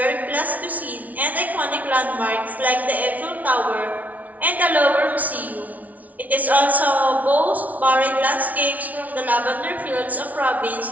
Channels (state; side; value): late; left; 0.073 ms